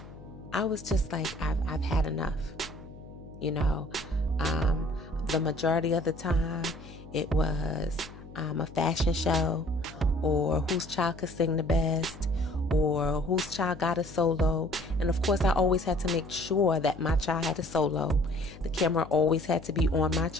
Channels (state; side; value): noise; left; hum, 17 dB below the sound